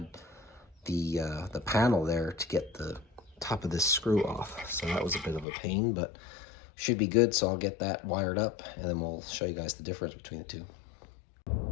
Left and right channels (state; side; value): drops out; right; at 5.5 s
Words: the panel there to get the top of this screw off, so that was a bit of a pain, but should be good. So I'll get that wired up and then we'll show you guys the difference between the two.